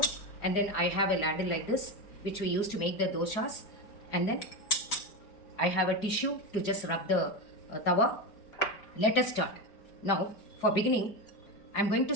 and then I have a ladle like this which we use to make the dosas, and then I have a tissue to just rub the tawa. Let us start. Now, for beginning, I'm going to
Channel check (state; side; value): late; right; 4.8 ms